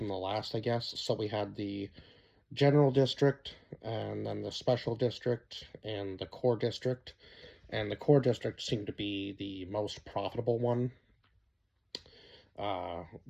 the last, I guess. So we had the general district, and then the special district, and the core district. And the core district seemed to be the most profitable one,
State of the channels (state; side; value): identical; both; correlation 1.00